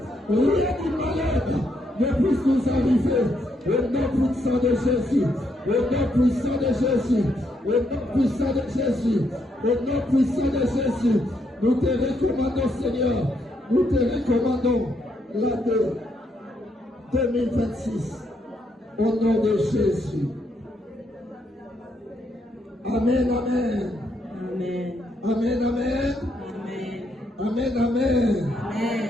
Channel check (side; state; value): both; normal; correlation 0.76